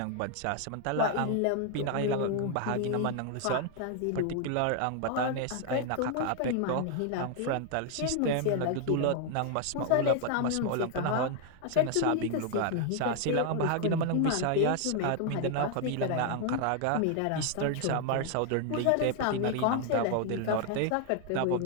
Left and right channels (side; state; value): both; different; correlation 0.00